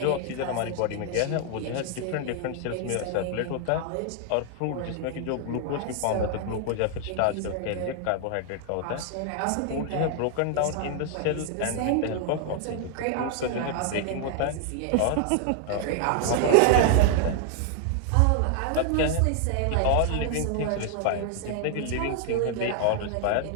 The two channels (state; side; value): different; both; correlation 0.00